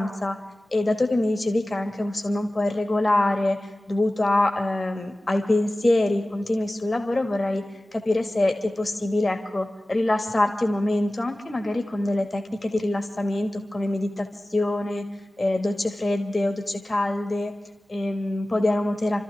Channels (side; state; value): both; normal; correlation 0.97